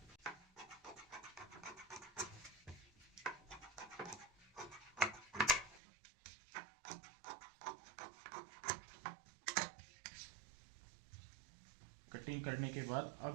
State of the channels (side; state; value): left; drops out; at 5.8 s